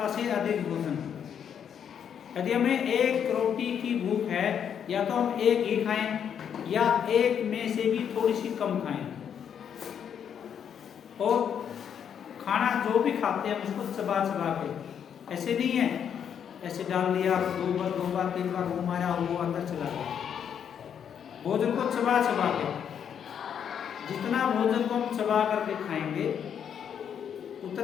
से अधिक भोजन। यदि हमें एक रोटी की भूख है, या तो हम एक ही खाएं या एक में से भी थोड़ी सी कम खाएं। और खाना जो भी खाते हैं उसको चबा चबा के, ऐसे नहीं है ऐसे डाल दिया, 2 बार 3 बार मुंह मारा, वो अंदर चला गया। भोजन को चबा चबा के, जितना भोजन को हम चबा करके खाएंगे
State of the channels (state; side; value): quieter; right; 8.3 dB